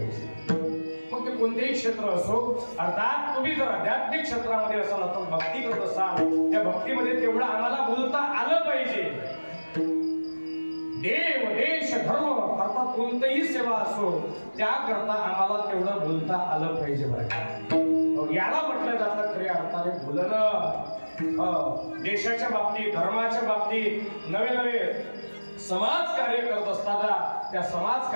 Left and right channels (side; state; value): both; inverted; correlation -1.00